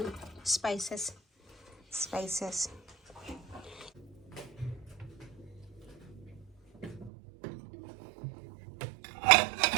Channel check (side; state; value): left; drops out; at 7.1 s